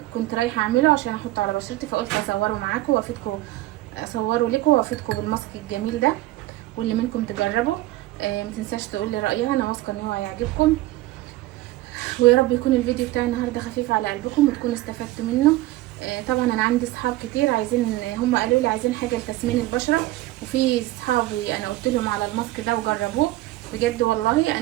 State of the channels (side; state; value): left; quieter; 17.1 dB